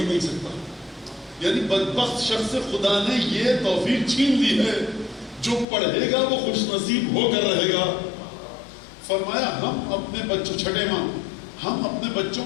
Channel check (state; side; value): drops out; right; at 5.7 s